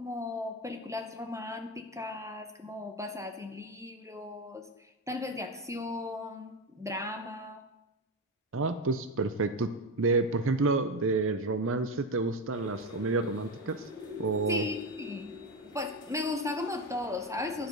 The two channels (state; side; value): normal; both; correlation 0.17